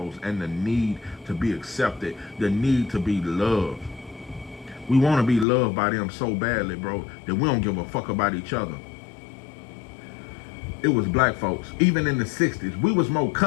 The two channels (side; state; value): right; drops out; at 5.5 s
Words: and the need to be accepted, the need to be loved. We want to be loved by them so badly, bro, that we don't give a fuck about each other. It was black folks. Even in the 60s, we was more